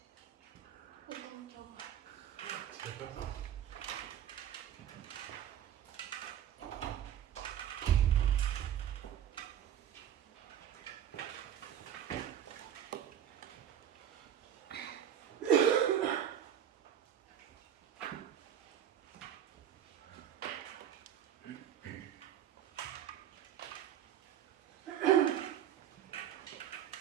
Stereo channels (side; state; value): left; quieter; 10.0 dB